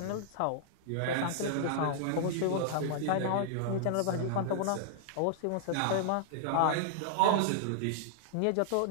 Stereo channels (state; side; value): different; both; correlation -0.01